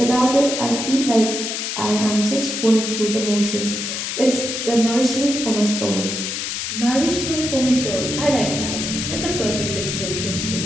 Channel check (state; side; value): noise; left; hiss, 3 dB below the sound